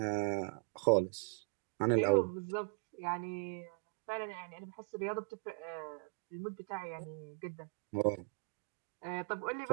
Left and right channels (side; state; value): left; silent; digital silence